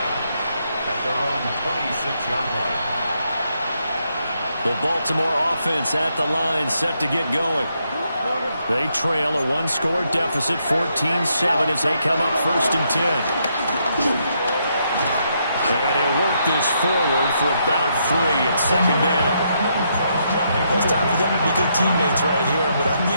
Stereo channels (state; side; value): inverted; both; correlation -0.77